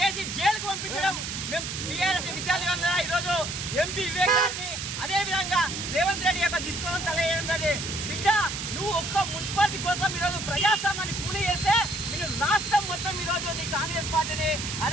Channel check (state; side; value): noise; right; hiss, 5 dB below the sound